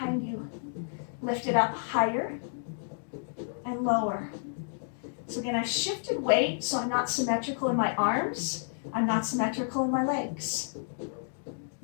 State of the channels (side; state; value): right; silent; digital silence